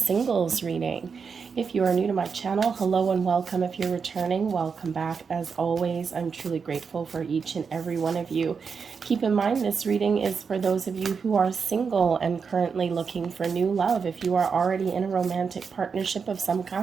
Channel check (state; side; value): quieter; left; 5.8 dB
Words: reading. If you are new to my channel, hello and welcome. If you're returning, welcome back. As always, I'm truly grateful for each and every one of you. Keep in mind, this reading is for those of you who are single and currently looking for new love. If you are already in a romantic partnership of some